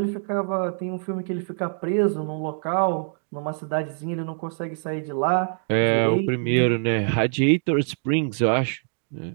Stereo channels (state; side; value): silent; left; 62 dB below the other